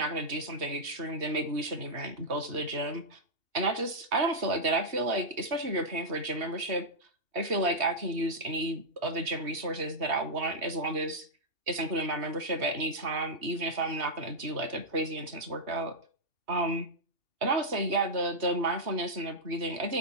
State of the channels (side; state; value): left; late; 2.7 ms